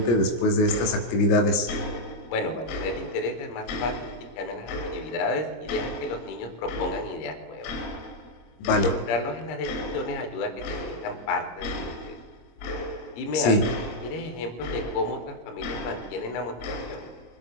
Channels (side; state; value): right; late; 25 ms